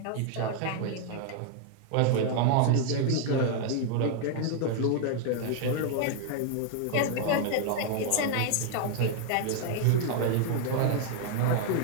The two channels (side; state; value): both; different; correlation 0.00